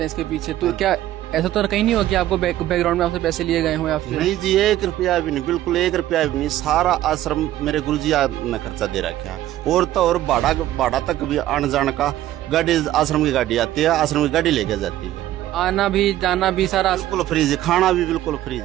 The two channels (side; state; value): left; quieter; 13.8 dB